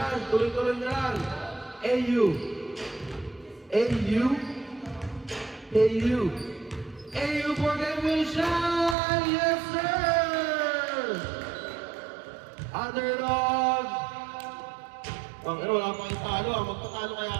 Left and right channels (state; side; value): drops out; left; at 9.0 s